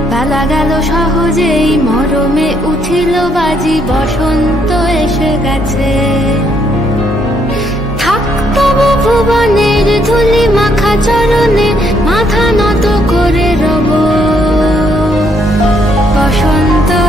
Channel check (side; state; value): both; normal; correlation 0.71